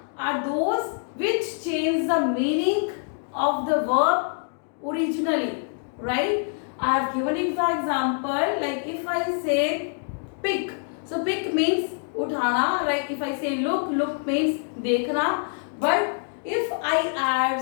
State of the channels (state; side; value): silent; right; 57 dB below the other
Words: are those which change the meaning of the verb originally, right? I have given you the example, like if I say pick, so pick means uthana, like if I say look, look means dekhna, but if I add